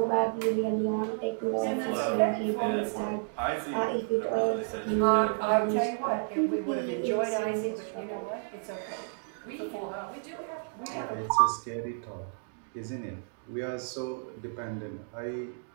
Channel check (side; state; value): left; silent; digital silence